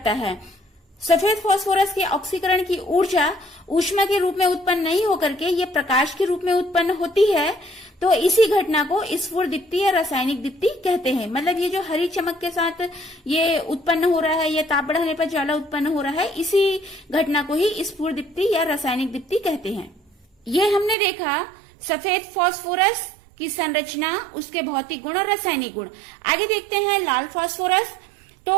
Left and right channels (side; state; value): left; drops out; at 21.0 s